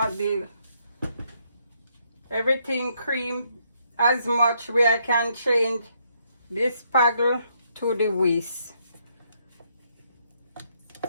everything cream as much where I can change this paddle to the whisk.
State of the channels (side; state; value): both; inverted; correlation -0.74